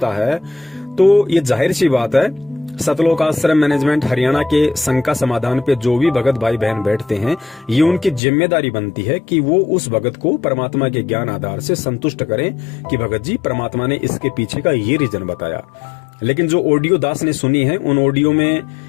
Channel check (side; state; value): right; drops out; at 8.2 s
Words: है, तो ये जाहिर सी बात है सतलोक आश्रम मैनेजमेंट हरियाणा के शंका समाधान पे जो भी भगत भाई बहन बैठते हैं, ये उनकी जिम्मेदारी बनती है कि वो उस भगत को परमात्मा के ज्ञान आधार से संतुष्ट करें कि भगत जी परमात्मा ने इसके पीछे का ये रीजन बताया। लेकिन जो ऑडियो दास ने सुनी है, उन ऑडियो में